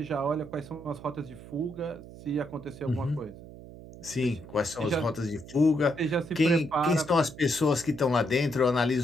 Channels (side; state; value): right; noise; hum, 16 dB below the sound